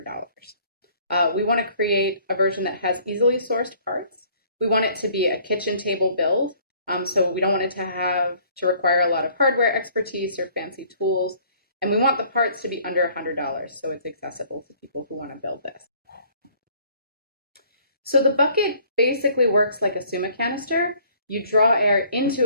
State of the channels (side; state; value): both; inverted; correlation -0.58